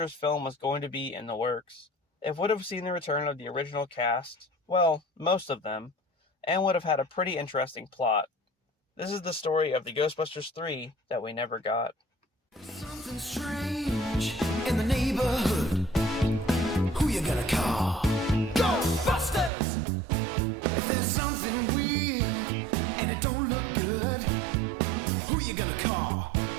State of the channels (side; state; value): left; drops out; at 19.5 s